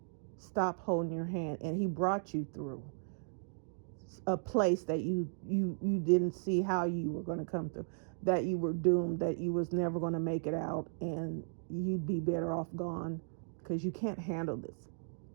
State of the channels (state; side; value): silent; left; digital silence